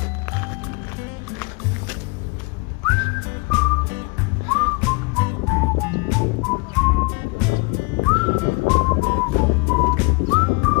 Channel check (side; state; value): right; quieter; 30.0 dB